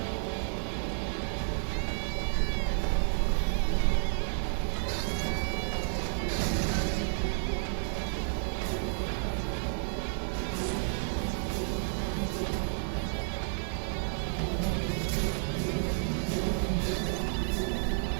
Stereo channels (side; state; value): left; silent; digital silence